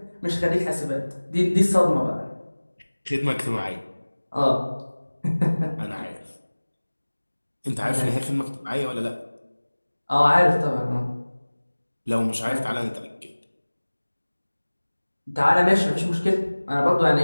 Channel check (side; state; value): both; inverted; correlation -1.00